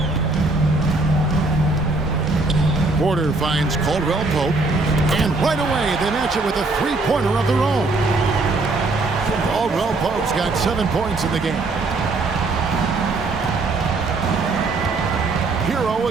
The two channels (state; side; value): quieter; left; 3.4 dB